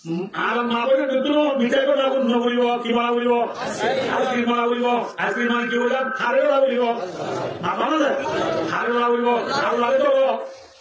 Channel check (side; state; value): both; identical; correlation 1.00